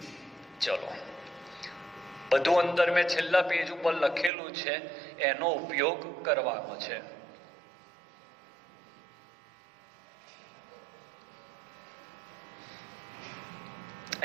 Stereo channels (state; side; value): drops out; left; at 4.3 s